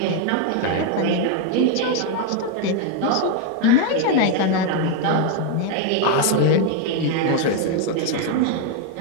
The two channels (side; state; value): both; different; correlation 0.01